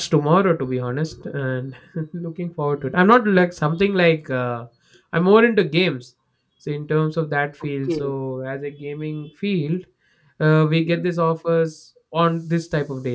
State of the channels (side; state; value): both; identical; correlation 1.00